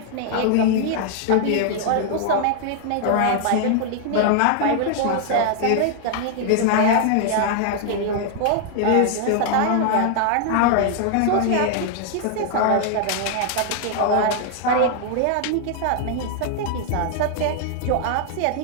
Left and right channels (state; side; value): different; both; correlation 0.00